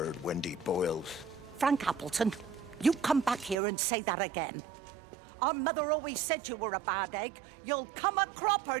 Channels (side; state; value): left; drops out; at 3.6 s